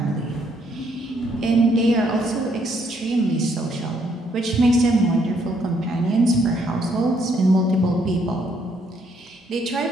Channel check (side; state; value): both; normal; correlation 0.70